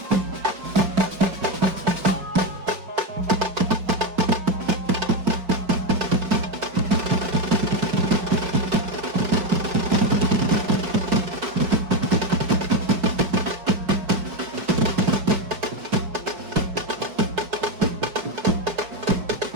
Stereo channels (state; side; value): late; left; 4.9 ms